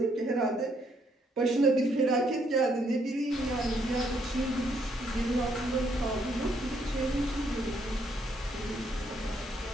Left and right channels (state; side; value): normal; both; correlation 0.71